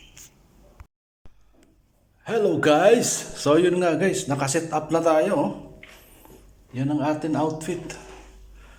Hello guys! So yun nga guys, nakaset up na tayo. Oh. Yan ang ating outfit.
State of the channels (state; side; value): identical; both; correlation 1.00